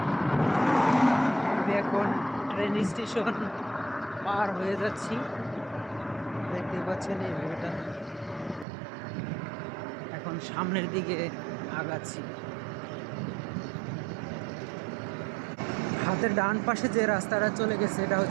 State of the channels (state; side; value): drops out; left; at 8.7 s